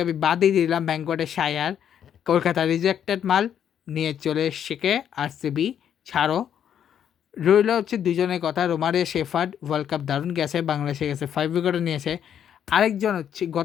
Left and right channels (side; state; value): right; quieter; 9.2 dB